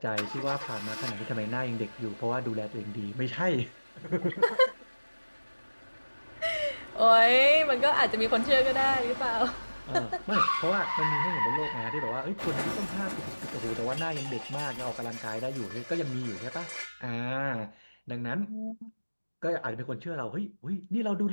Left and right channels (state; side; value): inverted; both; correlation -1.00